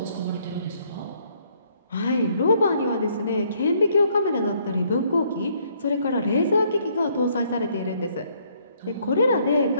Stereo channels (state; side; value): inverted; both; correlation -0.67